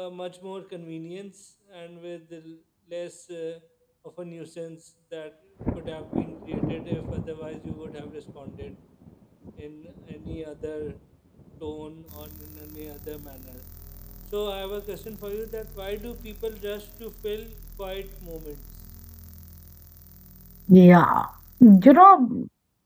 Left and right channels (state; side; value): identical; both; correlation 1.00